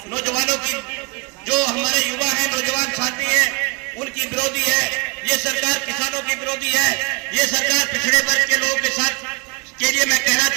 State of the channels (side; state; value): left; quieter; 29.9 dB